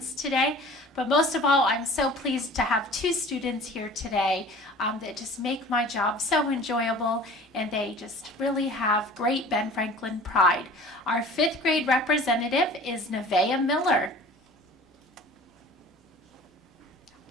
today. But most of all, I'm so pleased to have two students here today that just make my job so enjoyable, and they just really have great Ben Franklin pride. Our 5th grade representative is Nevaeh Miller.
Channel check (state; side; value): normal; both; correlation 0.44